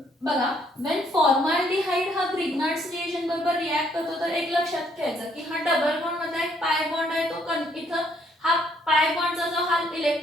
बघा व्हेन फॉर्माल्डिहाइड हा ग्रिग्नार्ड्स रिएजंट बरोबर रिएक्ट करतो तर एक लक्षात घ्यायचं की हा डबल बॉन्ड मध्ये एक पाय बॉन्ड आहे तो इथं हा पाय बॉन्डचा जो हा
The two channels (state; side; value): normal; both; correlation 0.67